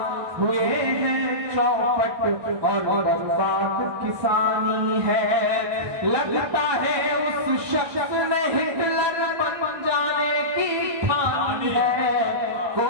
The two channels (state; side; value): late; left; 1.2 ms